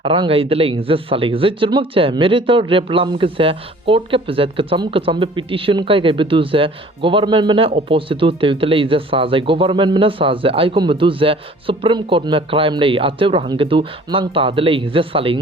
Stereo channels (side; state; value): both; normal; correlation 0.51